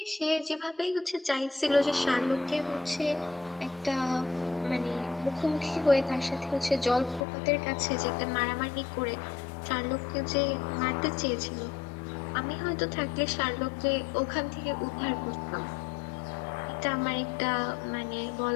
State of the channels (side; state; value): right; drops out; at 7.2 s